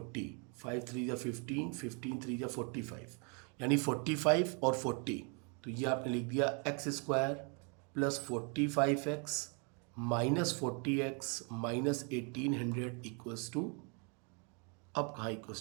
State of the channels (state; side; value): quieter; left; 36.2 dB